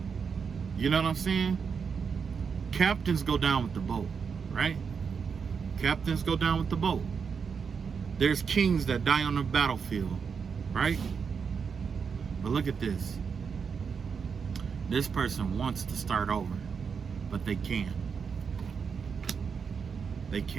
You know what I'm saying? Captains go down with the boat, right? Captains go down with the boat. There's kings that die on the battlefield, right? But look at this. This person wants to start over, but they can't. They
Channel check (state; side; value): quieter; left; 6.1 dB